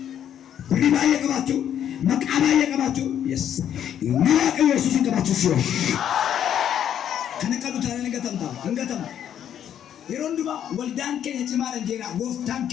ሪባየ ቀባቱ መቃባየ ቀባቱ yes ናቀ ኢየሱስ ቀባቱ ሲዮ ከነቀዱ ታረን እንገተም የሮንዱባ ወልዳን ከየጭማረ ጀራ ጎፍታን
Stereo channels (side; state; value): right; quieter; 9.8 dB